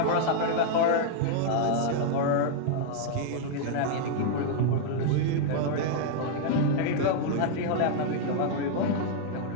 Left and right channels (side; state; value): both; different; correlation -0.01